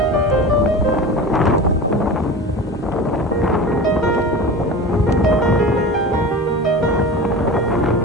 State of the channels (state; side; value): normal; both; correlation 0.32